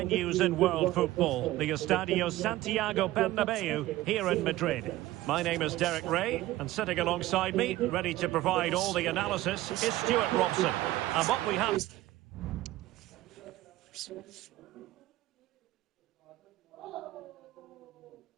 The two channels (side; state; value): left; quieter; 16.3 dB